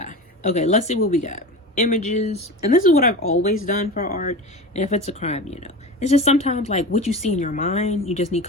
Okay, let's see what we got. Images, and this is what I've always done for art. And if it's a crime, you know, it's just sometimes like what you see in your mind, you just need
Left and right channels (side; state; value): both; normal; correlation 0.29